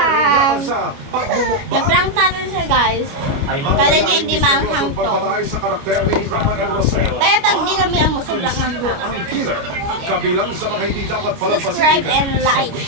laban sa pagmumukbang. Na-prank natin siya guys. Kala niya hindi maanghang to. Pagpatay sa karakter ni Rafael Rosel. Kaya tag hindi kami ang sobrang hanghang. Ang killer. Kabilang sa mga hindi dapat palampasin. Subscribe and like.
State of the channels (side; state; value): left; late; 29 ms